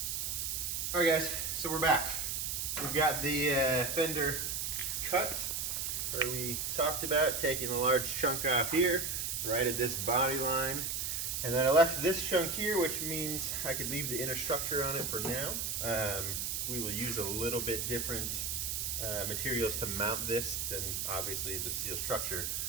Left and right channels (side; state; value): right; noise; hiss, 1 dB below the sound